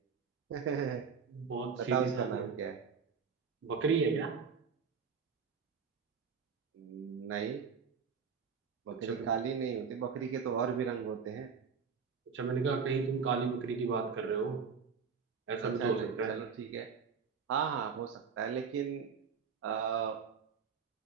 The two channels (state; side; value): quieter; left; 6.0 dB